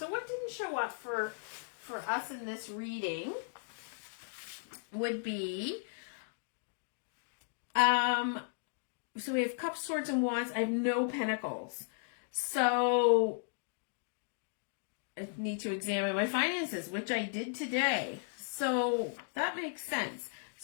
what didn't show up for us in this reading would be, so we have cups, swords, and wands. I have no pentacles. So I need to examine my finances, which I did today. So that makes sense.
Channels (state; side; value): silent; right; digital silence